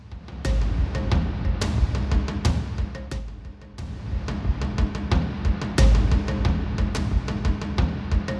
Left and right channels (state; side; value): identical; both; correlation 1.00